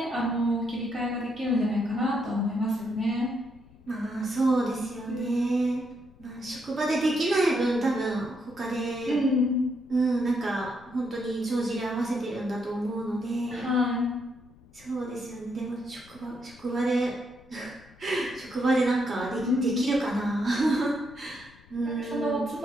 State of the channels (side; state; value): left; noise; rumble, 24 dB below the sound